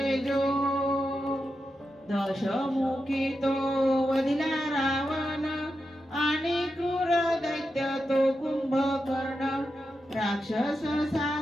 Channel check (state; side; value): normal; both; correlation 0.88